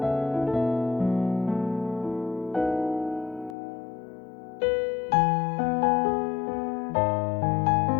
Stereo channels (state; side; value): drops out; right; at 3.6 s